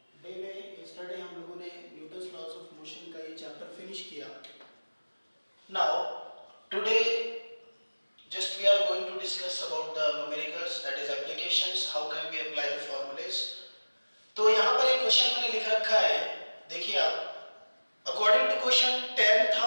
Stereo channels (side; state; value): both; inverted; correlation -1.00